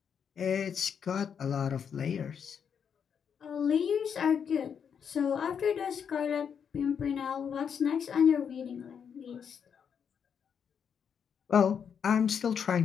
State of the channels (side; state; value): right; quieter; 7.4 dB